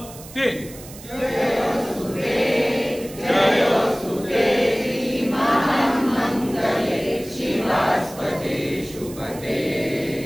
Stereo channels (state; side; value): noise; right; hiss, 17 dB below the sound